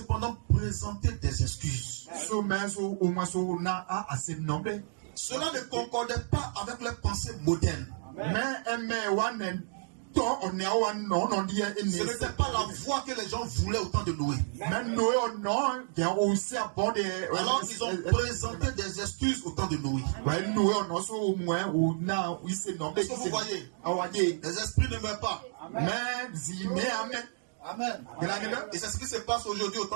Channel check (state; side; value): silent; left; digital silence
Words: présenté des excuses. Cela ne concordait pas avec leurs pensées modernes. Ce n'était pas la voie que les gens voulaient au temps de Noé. Alors ils ont présenté des excuses au temps de Noé. Est-ce que vous voyez? Les esprits ne meurent pas. Amen. Et c'est ce qui se passe aujourd'hui au